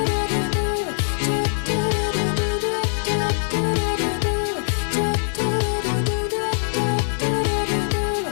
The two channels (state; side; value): silent; right; digital silence